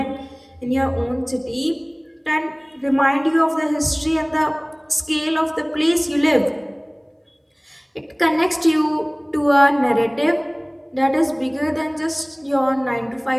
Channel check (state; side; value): identical; both; correlation 1.00